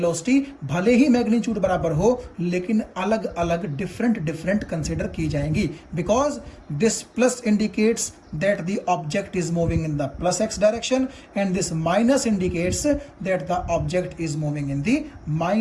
भले ही मैग्नीट्यूड बराबर हो, लेकिन अलग अलग डिफरेंट कंसिडर की जाएंगी, because this plus indicates that the object is moving in the plus x direction and this minus indicates that the object is moving in the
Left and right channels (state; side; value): identical; both; correlation 1.00